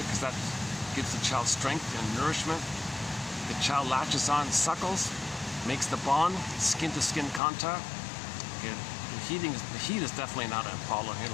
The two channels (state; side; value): drops out; right; at 7.4 s